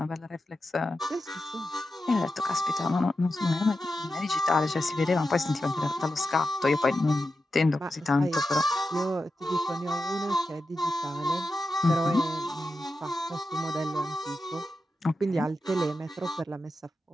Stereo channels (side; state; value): both; normal; correlation 0.90